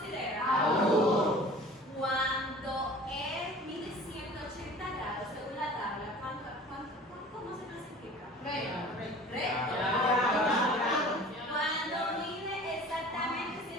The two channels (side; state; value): both; normal; correlation 0.43